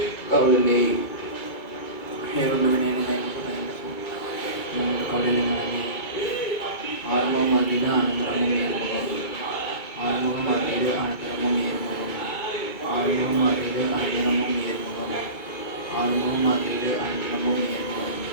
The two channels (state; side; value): late; right; 2.3 ms